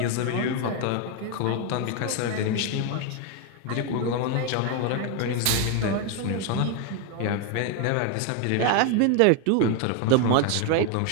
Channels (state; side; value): different; both; correlation 0.01